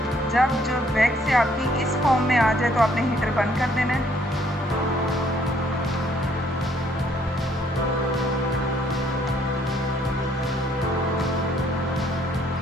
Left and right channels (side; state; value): both; normal; correlation 0.65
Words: जब जो वैक्स से आपकी इस फॉर्म में आ जाए तो आपने हीटर बंद कर देना है।